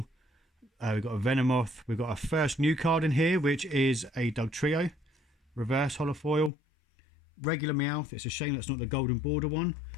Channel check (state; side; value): drops out; right; at 6.5 s